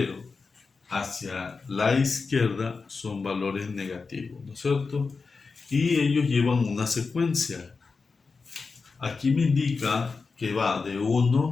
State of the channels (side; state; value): right; quieter; 4.5 dB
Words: hacia la izquierda son valores negativos, ¿no es cierto? Y ellos llevan una secuencia. Aquí me indica que va de